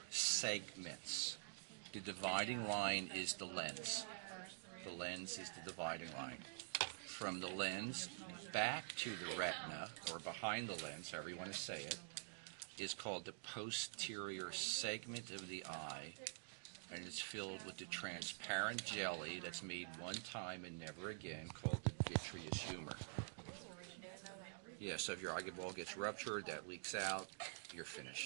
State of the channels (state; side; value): silent; left; digital silence